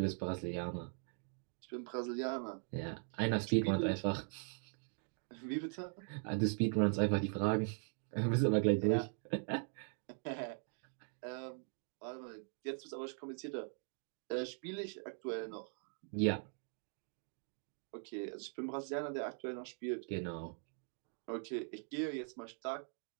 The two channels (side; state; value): left; silent; 50 dB below the other